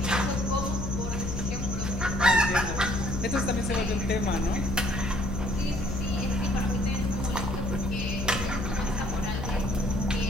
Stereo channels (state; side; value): noise; left; hum, 5 dB below the sound